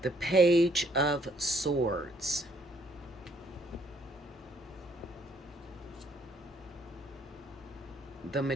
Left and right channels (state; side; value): normal; both; correlation 0.66